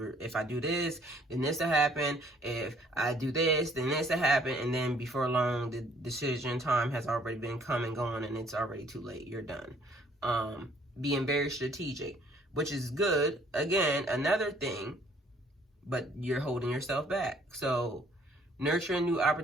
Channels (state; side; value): normal; both; correlation 0.61